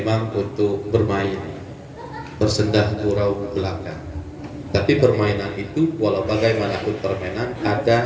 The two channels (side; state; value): both; identical; correlation 1.00